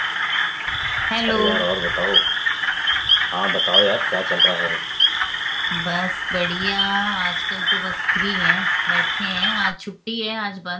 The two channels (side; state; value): both; identical; correlation 1.00